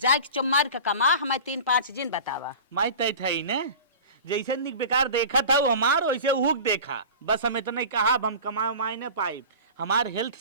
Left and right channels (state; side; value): inverted; both; correlation -0.36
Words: के चुम्मार के कमा हमें 3-5 दिन बतावा। माई तय थई ने जैसे निक बेकार देखा था हमार वैसे हुक देखा बस हम इतना कहा हम कमा माई न पाई हमार हेल्थ